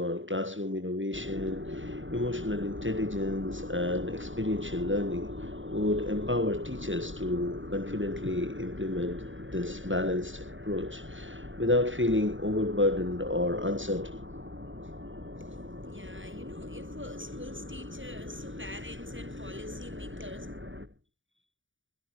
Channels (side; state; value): left; late; 0.56 ms